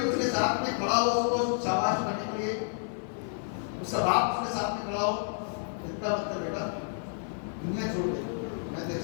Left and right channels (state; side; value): silent; right; 58 dB below the other